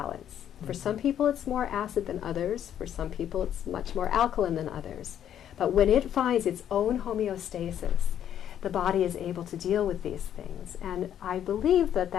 For some people it's more acid than others, for some people it's much more alkaline than others. But when it finds its own homeostasis, the body is able to deal with these things. And I believe that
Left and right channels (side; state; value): right; quieter; 10.1 dB